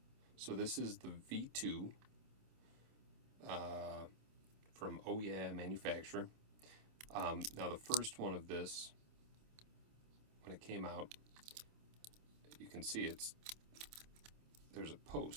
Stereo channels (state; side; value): late; left; 27 ms